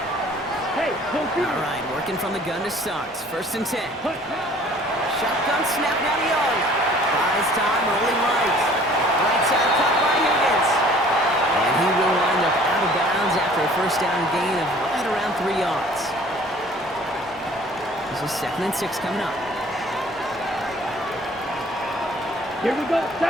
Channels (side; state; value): both; normal; correlation 0.52